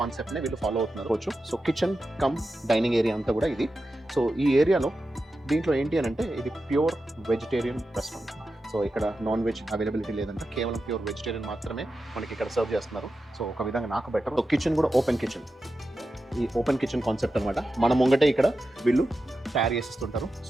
వీళ్ళు ఫాలో అవుతున్నారు. So kitchen cum dining area అంతా కూడా ఇది. సో ఈ ఏరియాలో దీంట్లో ఏంటి అని అంటే ఇది ప్యూర్ వెజిటేరియన్ రెస్టారెంట్. సో ఇక్కడ నాన్ వెజ్ అవైలబిలిటీ లేదంటే కేవలం ప్యూర్ వెజిటేరియన్ మాత్రమే మనకి ఇక్కడ సర్వ్ చేస్తున్నారు. సో ఒక విధంగా నాకు బెటర్. సో కిచెన్ కూడా ఓపెన్ కిచెన్, ఈ ఓపెన్ కిచెన్ కాన్సెప్ట్ అనమాట. మన ముంగటే ఇక్కడ వీళ్ళు తయారు చేసిస్తుంటారు.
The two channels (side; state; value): both; normal; correlation 0.91